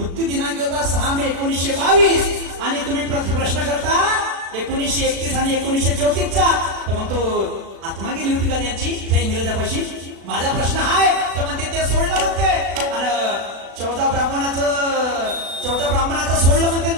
दिनांक होता 6 मे 1922 आणि तुम्ही प्रश्न करता 1931 आणि 1934चा. तर मग तो आत्मा गेली होती का त्यांची त्या इंग्रजापाशी. माझा प्रश्न आहे तर म्हणते ते सोडलं म्हणते आणि 14 ब्राह्मणाचं सोडलं म्हणते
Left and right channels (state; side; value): late; left; 36 ms